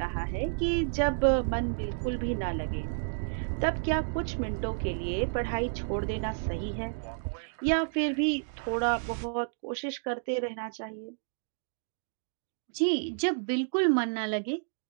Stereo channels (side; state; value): left; silent; digital silence